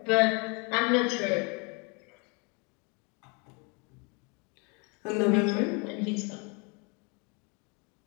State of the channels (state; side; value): quieter; right; 32.3 dB